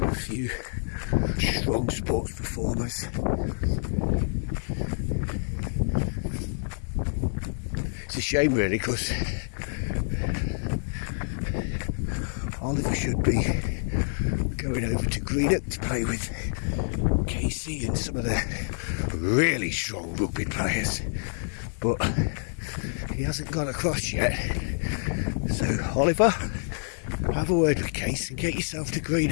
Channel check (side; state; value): right; silent; digital silence